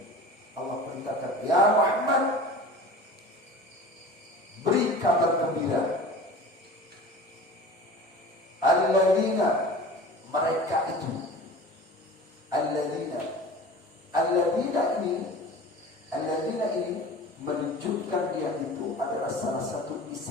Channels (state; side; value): normal; both; correlation 0.38